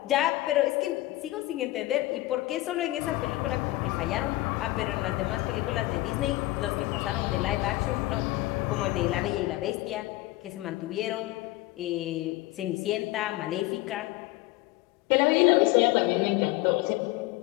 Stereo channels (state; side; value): quieter; right; 18.4 dB